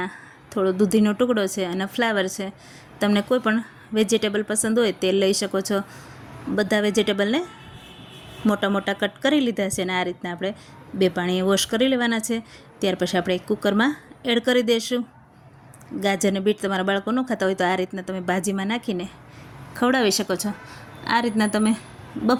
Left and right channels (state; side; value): identical; both; correlation 1.00